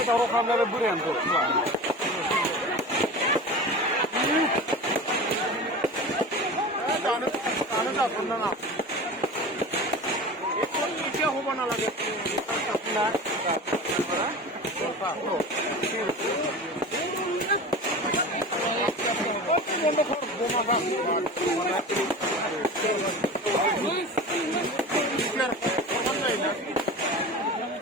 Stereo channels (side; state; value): both; normal; correlation 0.32